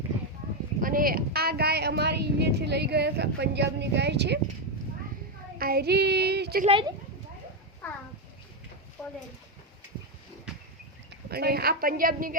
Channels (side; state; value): both; normal; correlation 0.05